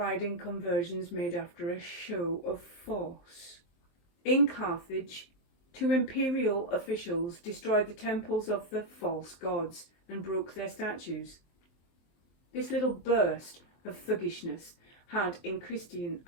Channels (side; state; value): right; late; 23 ms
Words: in conversions made after a show of force. In Carthage, 2 imperial officials destroyed the temples of the false gods and broke their statues. This little burst of thuggishness had, in Christian